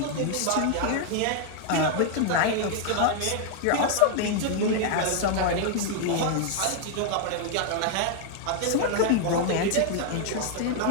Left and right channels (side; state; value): both; different; correlation 0.00